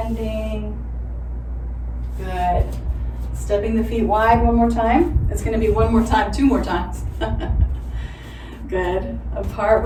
Good. Stepping the feet wide one more time. It's going to be one more time, 2 more times. Good. Apart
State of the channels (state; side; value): identical; both; correlation 1.00